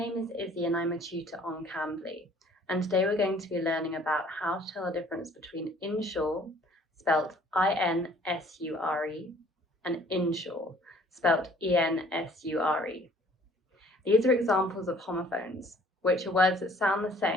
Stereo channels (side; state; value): both; normal; correlation 0.56